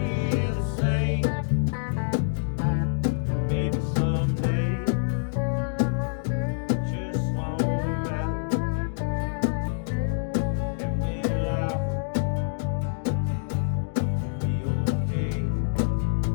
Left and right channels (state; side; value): silent; right; digital silence